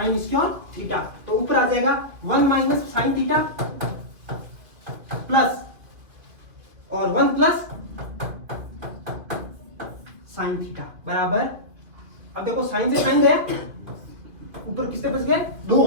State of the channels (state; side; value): late; left; 2.6 ms